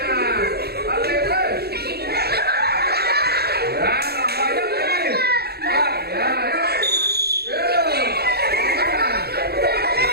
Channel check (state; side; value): late; left; 0.46 ms